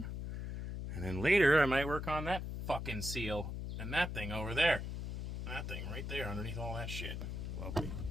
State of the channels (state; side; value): noise; left; hum, 4 dB below the sound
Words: And then later, I might work on that fucking seal and that thing over there. That thing right there underneath all that shit. Lovely.